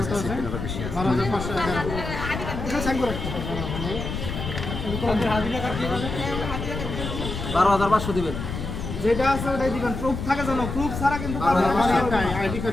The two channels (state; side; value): noise; left; rumble, 5 dB below the sound